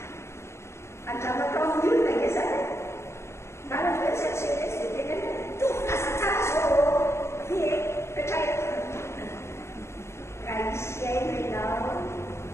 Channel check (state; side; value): late; right; 0.13 ms